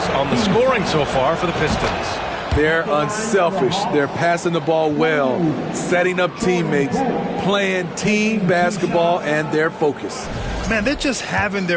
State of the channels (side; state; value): both; identical; correlation 1.00